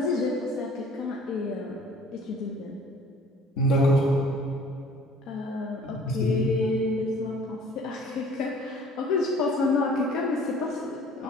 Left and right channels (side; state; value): both; normal; correlation 0.51